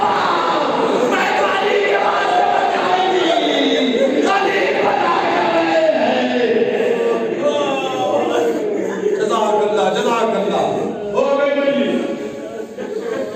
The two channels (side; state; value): both; identical; correlation 1.00